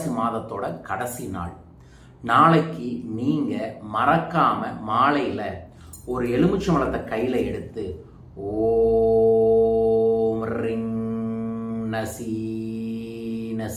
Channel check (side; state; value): both; identical; correlation 1.00